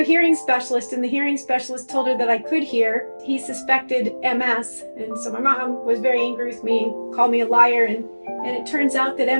a hearing specialist, and the hearing specialist told her that I could hear. He suspected MS, and so my mom was very angry with me and called me a liar, and it turns out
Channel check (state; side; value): inverted; both; correlation -1.00